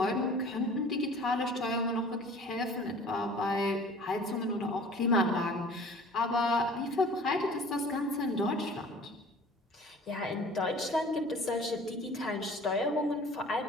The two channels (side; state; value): both; normal; correlation 0.47